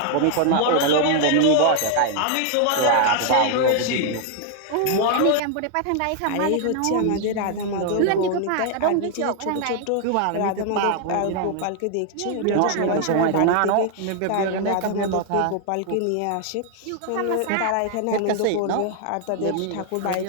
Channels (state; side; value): different; both; correlation 0.00